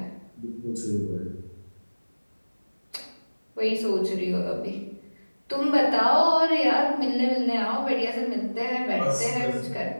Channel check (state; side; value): inverted; both; correlation -1.00